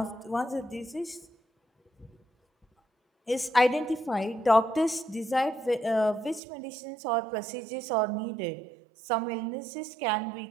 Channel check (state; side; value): drops out; left; at 6.4 s